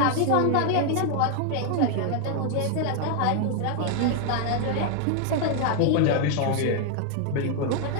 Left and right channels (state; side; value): different; both; correlation 0.00